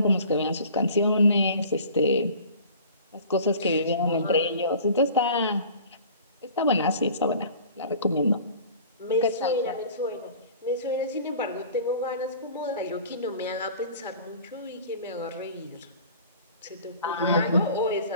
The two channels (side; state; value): both; inverted; correlation -0.45